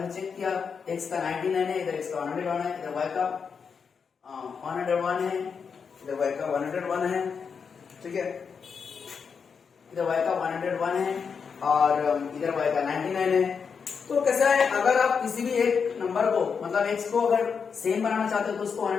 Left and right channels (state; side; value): quieter; right; 6.1 dB